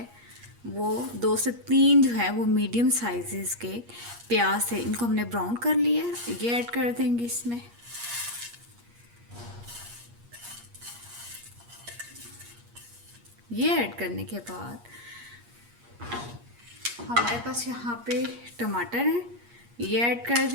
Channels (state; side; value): late; left; 8.5 ms